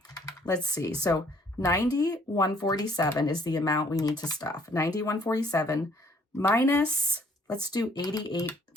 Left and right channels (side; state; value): both; normal; correlation 0.61